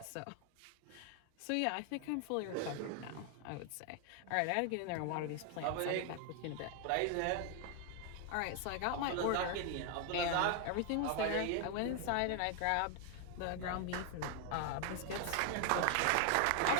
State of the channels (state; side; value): different; both; correlation 0.00